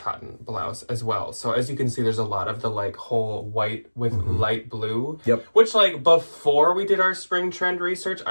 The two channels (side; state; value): both; inverted; correlation -1.00